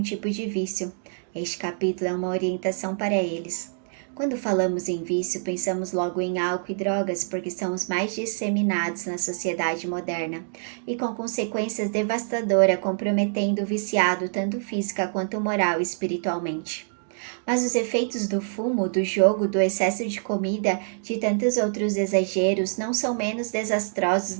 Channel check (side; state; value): left; silent; digital silence